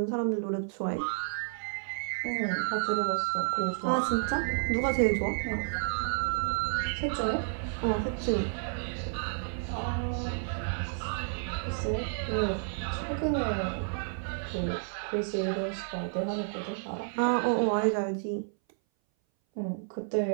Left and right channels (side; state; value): left; silent; 57 dB below the other